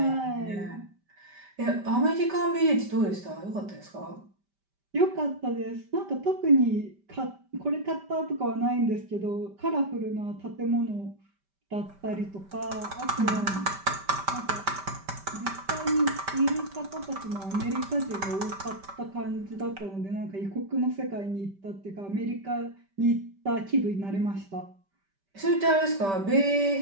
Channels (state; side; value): late; left; 5.1 ms